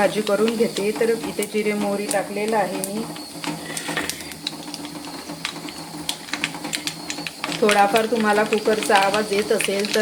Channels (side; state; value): both; identical; correlation 1.00